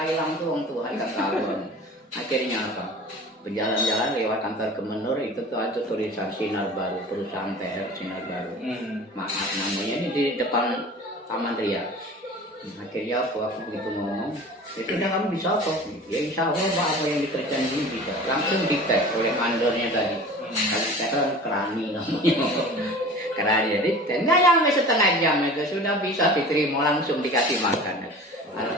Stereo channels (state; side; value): normal; both; correlation 0.40